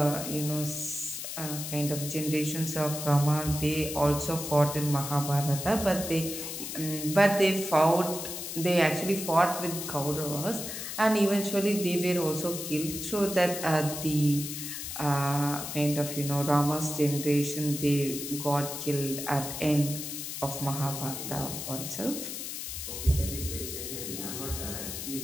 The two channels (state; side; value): noise; left; hiss, 6 dB below the sound